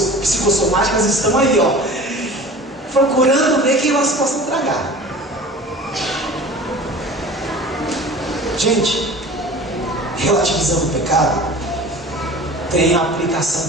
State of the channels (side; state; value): both; normal; correlation 0.40